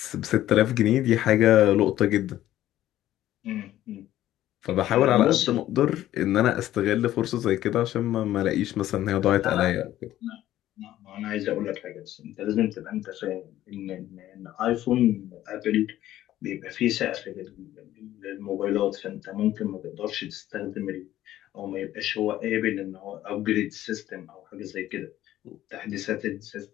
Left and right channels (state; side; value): quieter; right; 13.6 dB